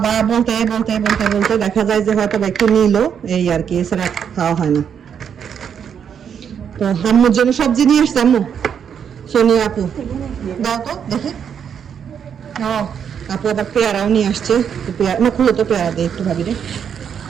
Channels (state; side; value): quieter; left; 7.9 dB